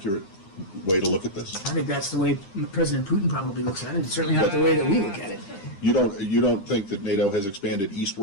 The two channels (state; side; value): late; right; 10 ms